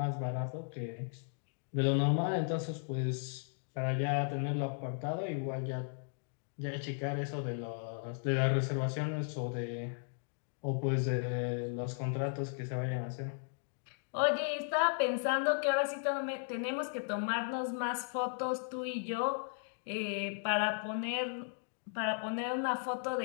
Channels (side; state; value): right; silent; digital silence